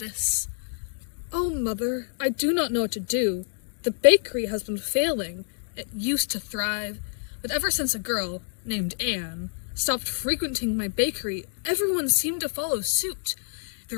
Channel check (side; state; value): right; silent; digital silence